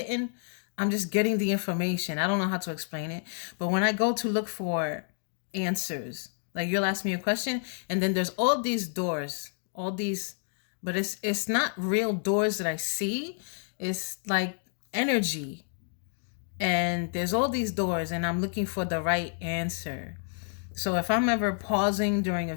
the information. I don't know how to explain it, but when I go to look for answers, like you'll ask me a question and then there's all these doors, but it's not real doors that I see. It's like energy. And there's all these doors and I'm looking for the right answer. So if I'm ever pausing during a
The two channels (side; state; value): right; silent; 58 dB below the other